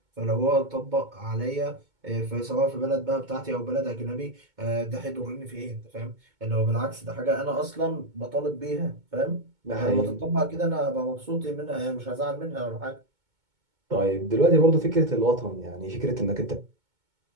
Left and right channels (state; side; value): late; left; 2.2 ms